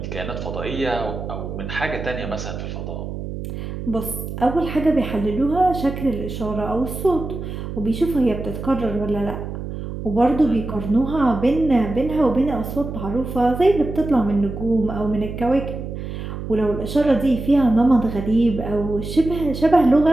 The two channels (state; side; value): noise; right; hum, 7 dB below the sound